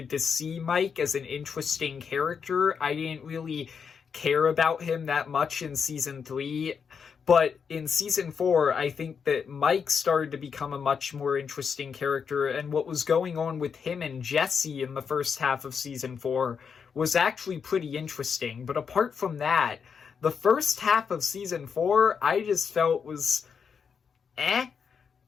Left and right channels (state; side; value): quieter; right; 6.4 dB